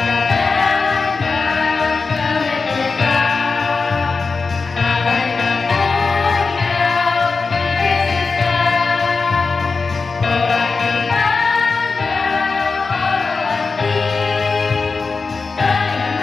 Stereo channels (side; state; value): right; quieter; 4.4 dB